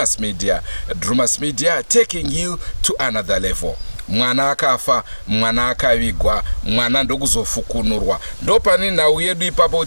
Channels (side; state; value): both; inverted; correlation -1.00